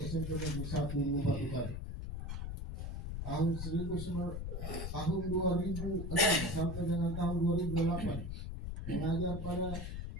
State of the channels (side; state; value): left; noise; rumble, 5 dB below the sound